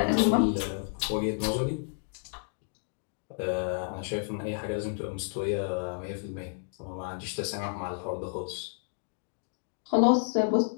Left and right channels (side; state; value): right; silent; digital silence